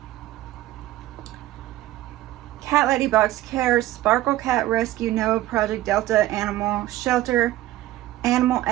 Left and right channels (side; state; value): left; quieter; 15.5 dB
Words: Cat Lady Box Cares, Sparkle Cat Rescue, NOAA Project Delta Animal Shelter, Animal